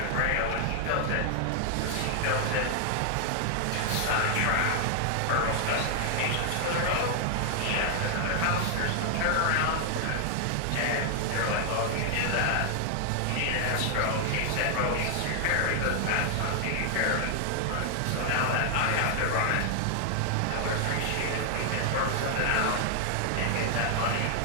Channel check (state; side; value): different; both; correlation 0.00